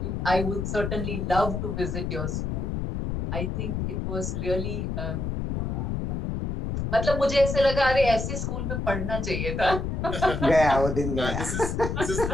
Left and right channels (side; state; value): left; noise; rumble, 2 dB below the sound